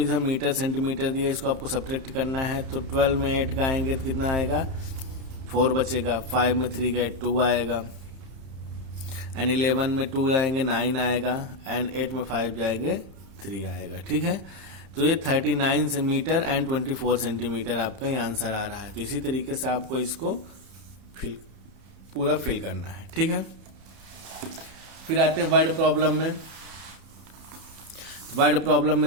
मीटर सेंटीमीटर दिया, इसको आपको सब्ट्रैक्ट करना है। तो 12 में 8 का आएंगे तो कितना आएगा? 4 बचेगा। 5 में 3 गए 2 आएगा। एंड 11 में 2 आएंगे 9 आएगा। एंड 8 में 5 जाएंगे 3 आएगा। ठीक है, तो ये 39 मीटर एंड 24 सेंटीमीटर आपका ये आंसर आ रहा है। तो इसी तरीके से आपको इसको पूरा फिल करना है। ठीक है, फिर आते हैं वर्ड प्रॉब्लम में। वर्ड प्रॉब्लम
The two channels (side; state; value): left; late; 30 ms